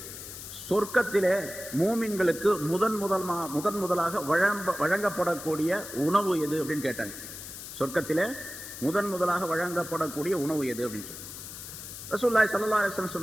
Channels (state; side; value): noise; left; hiss, 11 dB below the sound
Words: சொர்க்கத்திலே மூமின்களுக்கு முதன் முதலாக வழங்கப்படக்கூடிய உணவு எது அப்படின்னு கேட்டாங்க. சொர்க்கத்திலே முதலாக வழங்கப்படக்கூடிய உணவு எது அப்படின்னு சொல்லி ரசூலுல்லாஹி ஸல்லல்லாஹு அலைஹி வஸல்லம்